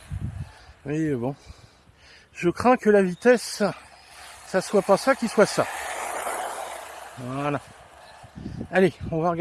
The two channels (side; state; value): both; identical; correlation 1.00